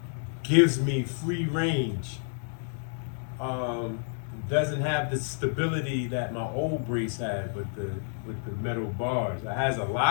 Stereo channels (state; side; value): silent; right; digital silence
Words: gives me free range. Doesn't have the stability that my old brace had with the metal bars. It has a